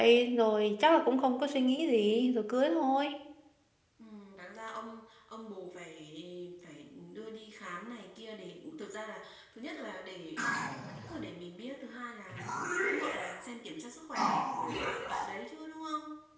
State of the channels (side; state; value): both; identical; correlation 1.00